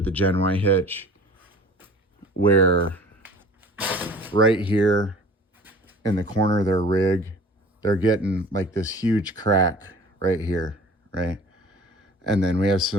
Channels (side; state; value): both; normal; correlation 0.46